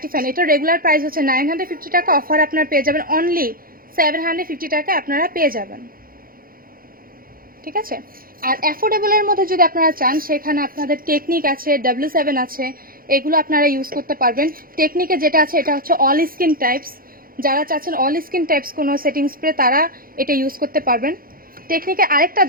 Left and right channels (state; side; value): late; left; 0.42 ms